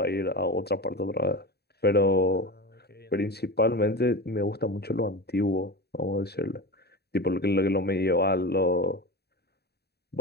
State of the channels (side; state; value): right; late; 0.47 ms